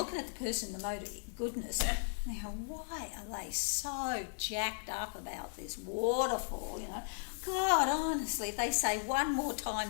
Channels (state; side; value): silent; right; digital silence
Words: at the person in the mode of goodness. And they go, why are they so jacked up about this waterfall, God, honestly, if they say one more